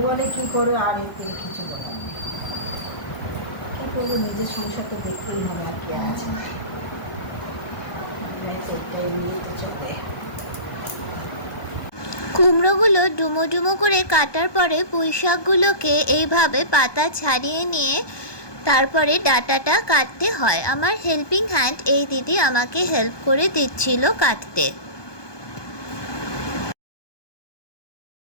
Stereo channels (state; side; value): late; right; 1.2 ms